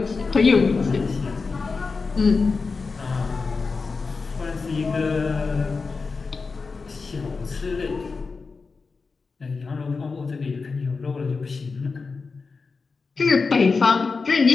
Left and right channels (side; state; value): right; quieter; 4.5 dB